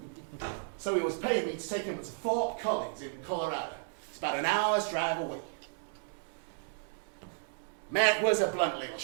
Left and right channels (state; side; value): silent; left; 55 dB below the other